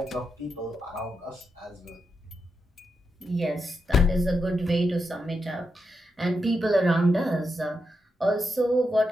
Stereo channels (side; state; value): both; normal; correlation 0.85